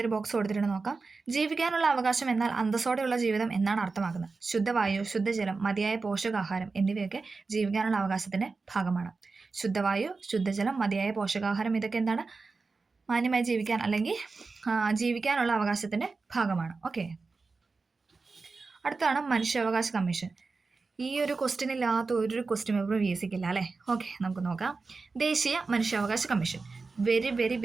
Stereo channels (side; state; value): left; quieter; 4.1 dB